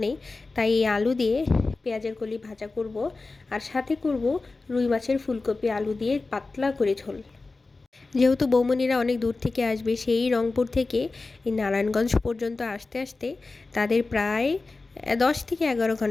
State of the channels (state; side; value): quieter; right; 3.6 dB